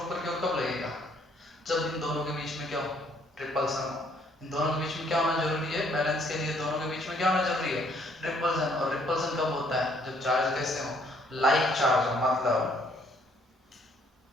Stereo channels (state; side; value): normal; both; correlation 0.65